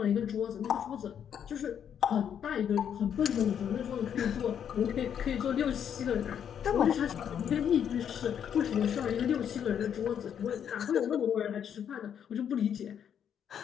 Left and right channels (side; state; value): right; quieter; 8.6 dB